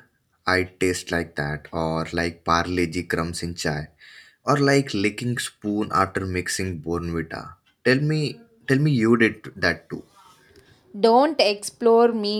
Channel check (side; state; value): both; identical; correlation 1.00